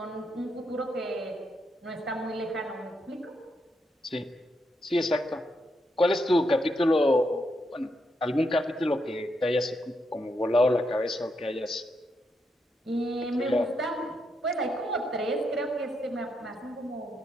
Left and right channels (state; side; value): normal; both; correlation 0.80